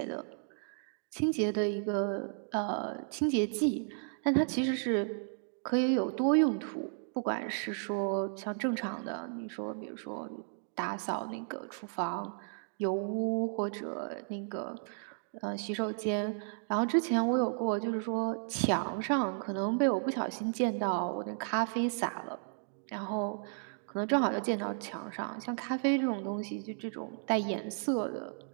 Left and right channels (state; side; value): silent; left; digital silence